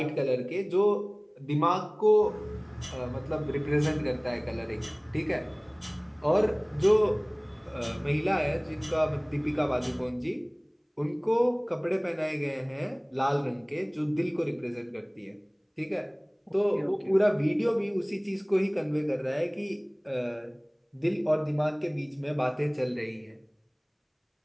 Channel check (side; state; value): both; identical; correlation 1.00